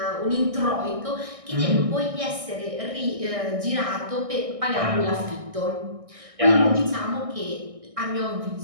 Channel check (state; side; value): late; left; 1.6 ms